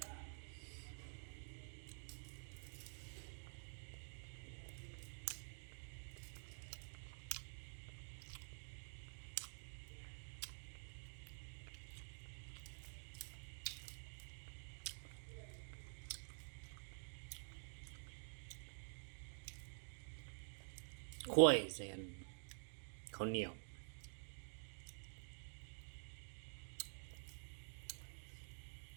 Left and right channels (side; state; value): left; silent; digital silence